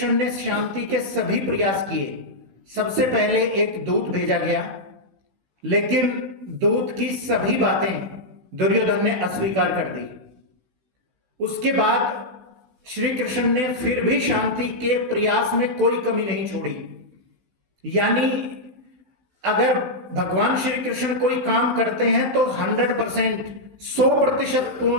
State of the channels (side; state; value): left; late; 16 ms